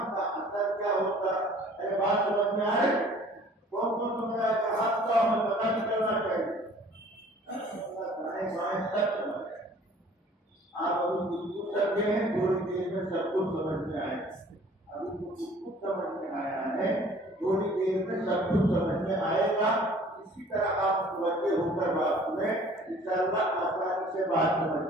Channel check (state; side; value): normal; both; correlation 0.52